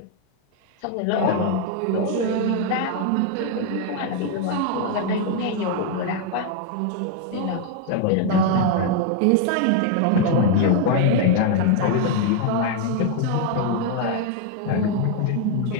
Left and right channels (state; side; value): different; both; correlation 0.01